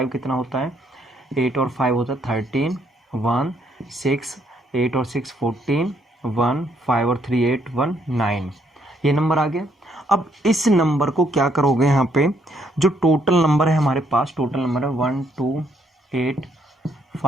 कितना होता है, 8 और 5 होता है 13, 1 6, 8 और 6 14, 1 5 और 3 8 1 9, ये नंबर आ गया। अब इस नंबर को क्या करोगे, यहाँ पे जो टोटल नंबर है हमारे पास, टोटल नंबर है 1 2 8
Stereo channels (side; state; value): both; normal; correlation 0.71